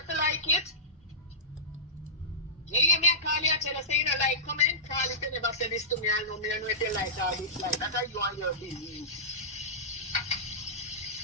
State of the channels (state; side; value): normal; both; correlation -0.17